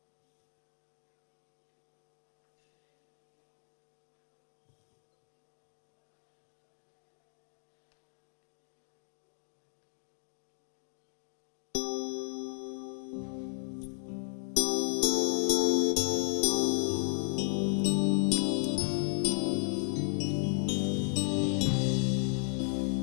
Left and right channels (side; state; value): right; silent; digital silence